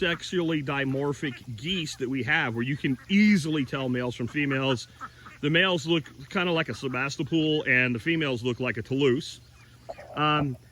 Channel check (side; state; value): both; identical; correlation 1.00